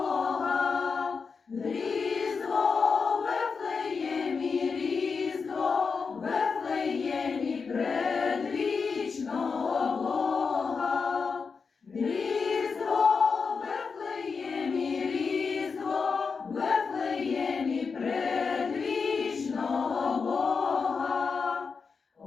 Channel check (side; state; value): right; quieter; 5.2 dB